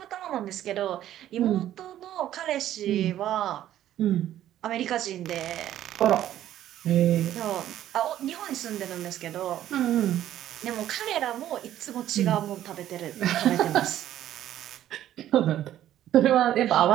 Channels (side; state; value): left; quieter; 12.3 dB